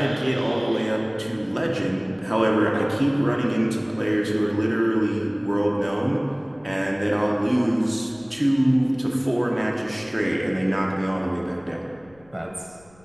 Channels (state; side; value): noise; left; rumble, 29 dB below the sound